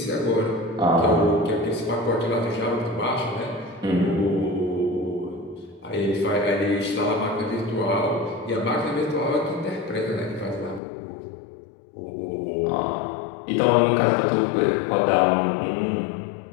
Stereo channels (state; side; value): drops out; right; at 10.8 s